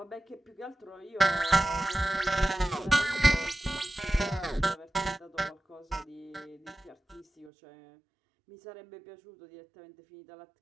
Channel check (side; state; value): left; drops out; at 7.5 s